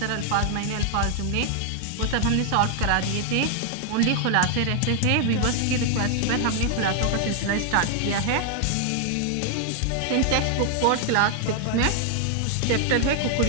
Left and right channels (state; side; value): different; both; correlation 0.00